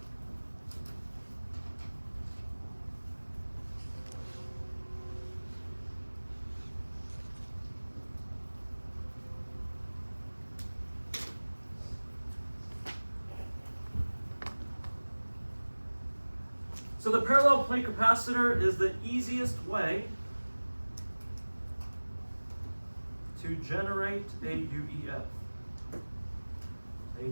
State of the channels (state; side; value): inverted; both; correlation -1.00